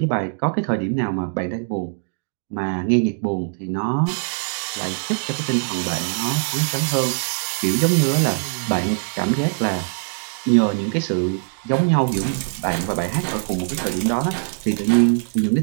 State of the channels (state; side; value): silent; left; digital silence